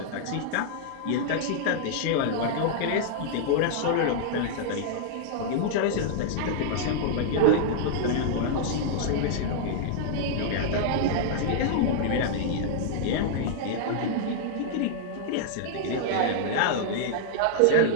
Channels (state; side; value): different; both; correlation -0.01